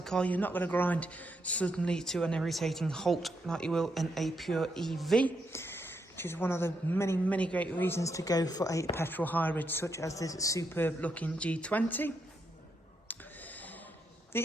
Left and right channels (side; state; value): both; normal; correlation 0.80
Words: car, you're not going to grind suddenly to an irritating halt like you will in a pure EV, which is one of the many great reasons to go for a petrol hybrid such as this superb looking G20.